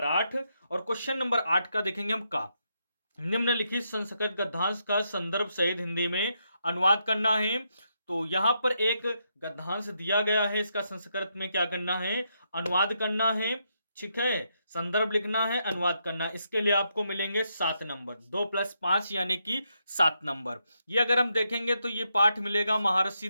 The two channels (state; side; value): inverted; both; correlation -0.80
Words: 8, और क्वेश्चन नंबर 8 का देखेंगे हम का। निम्नलिखित संस्कृत गद्यांश का संदर्भ सहित हिंदी में अनुवाद करना है। तो यहां पर एक गद्यांश दिया गया है, इसका संस्कृत में क्या करना है, अनुवाद करना है, ठीक है। संदर्भ लिखना है, अनुवाद करना है। इसके लिए आपको मिलेंगे 7 नंबर, 2 + 5 यानी कि 7 नंबर। ये अगर हम देखेंगे तो ये पाठ मिलेगा महर्षि